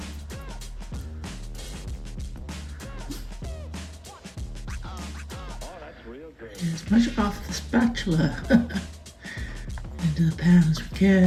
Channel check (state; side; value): identical; both; correlation 1.00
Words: Oh, that's real good. Get as much off the spatula into the pan as we